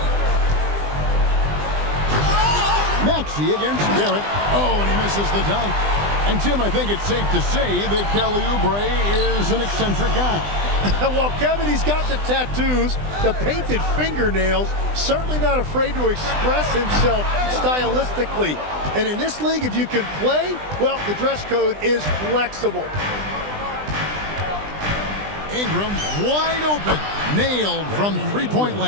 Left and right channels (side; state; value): left; late; 20 ms